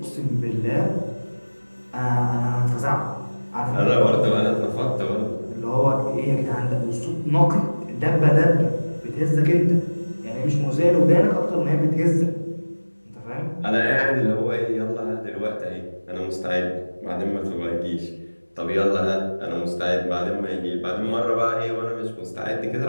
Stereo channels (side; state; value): both; inverted; correlation -1.00